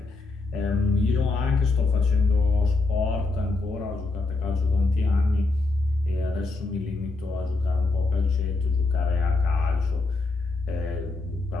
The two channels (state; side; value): quieter; right; 3.5 dB